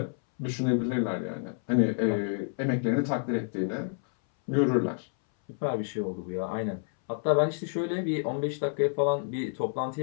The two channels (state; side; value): silent; right; 59 dB below the other